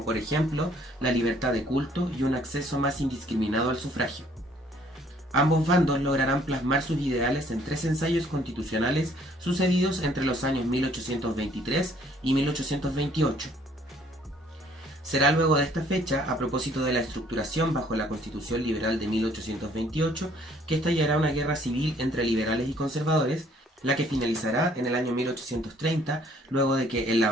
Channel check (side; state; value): both; normal; correlation 0.61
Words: por ejemplo la libertad de culto y un acceso más indiscriminado al sufragio. Ambos bandos lograrán plasmar sus ideales en 3 ensayos constitucionales sucedidos entre los años 1823 y 1828. Será luego de esta fecha, a propósito de la estructuración bajo la Constitución Liberal de 1828, que estallará una guerra civil entre liberales y conservadores, la que finalizará en el año 1830, luego de que en la